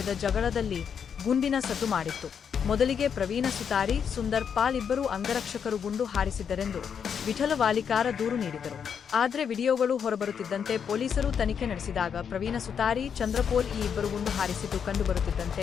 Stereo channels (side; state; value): right; quieter; 7.3 dB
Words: ಜಗಳದಲ್ಲಿ ಗುಂಡಿನ ಸದ್ದು ಮಾಡಿತ್ತು. ಮೊದಲಿಗೆ ಪ್ರವೀಣ ಸುತಾರಿ, ಸುಂದರ್ ಪಾಲ್ ಇಬ್ಬರು ಅಂಗರಕ್ಷಕರು ಗುಂಡು ಹಾರಿಸಿದ್ದರೆಂದು ವಿಠಲ ವಾಲಿಕಾರ ದೂರು ನೀಡಿದರು. ಆದರೆ ವಿಡಿಯೋಗಳು ಹೊರಬರುತ್ತಿದ್ದಂತೆ ಪೊಲೀಸರು ತನಿಖೆ ನಡೆಸಿದಾಗ ಪ್ರವೀಣ ಸುತಾರಿ, ಚಂದ್ರಪೋಲ್ ಈ ಇಬ್ಬರು ಗುಂಡು ಹಾರಿಸಿದ್ದು ಕಂಡುಬರುತ್ತಿದ್ದಂತೆ